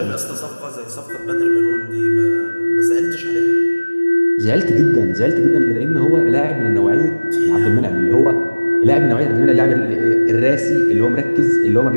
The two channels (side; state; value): both; inverted; correlation -1.00